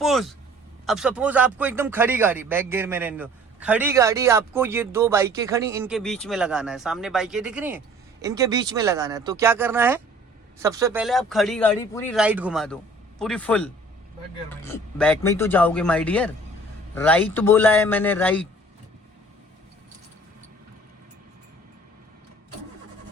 आपको एकदम खड़ी गाड़ी, बैक गियर में रहने दो, खड़ी गाड़ी आपको ये 2 बाइकें खड़ी, इनके बीच में लगाना है। सामने बाइकें दिख रही हैं, इनके बीच में लगाना है। तो क्या करना है, सबसे पहले आप खड़ी गाड़ी पूरी राइट घुमा दो, पूरी फुल। बैक में ही तो जाओगे माय डियर, राइट बोला है मैंने, राइट।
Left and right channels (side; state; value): both; normal; correlation 0.51